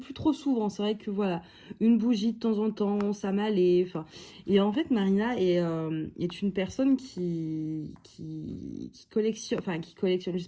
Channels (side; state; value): both; identical; correlation 1.00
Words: trop souvent. C'est vrai que voilà, une bougie de temps en temps, ça m'allait. Enfin, et en fait, Marina est une personne qui collectionne... Enfin, qui collectionne. Je sais